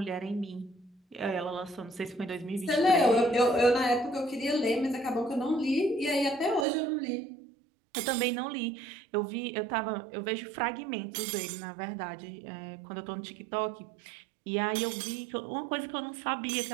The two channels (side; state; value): left; drops out; at 6.7 s